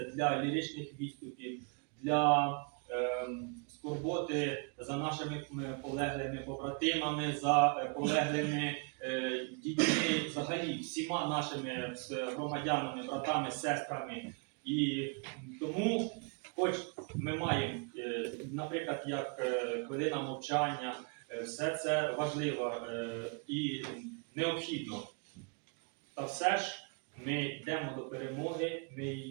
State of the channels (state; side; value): quieter; left; 36.2 dB